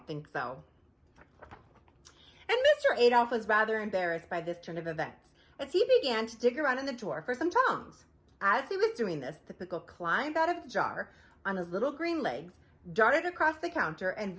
think so. And Mr. Adolph was rather embarrassed by this turn of events, as he began to dig around in the drawer for some tongs. As he was doing this, the pickle climbed out of the jar on his little green legs, darted across the counter, and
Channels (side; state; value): both; identical; correlation 1.00